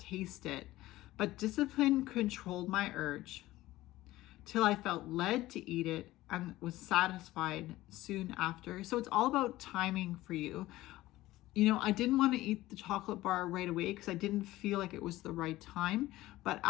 it, but discipline controlled my urge till I felt led to eat it and was satisfied soon after. So it's all about timing for you. You know, I didn't want to eat the chocolate bar right away because I didn't feel like it was the right time. But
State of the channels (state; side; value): quieter; right; 16.9 dB